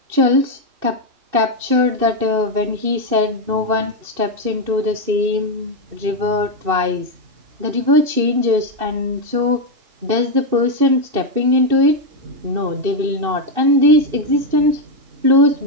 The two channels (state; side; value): late; left; 2.6 ms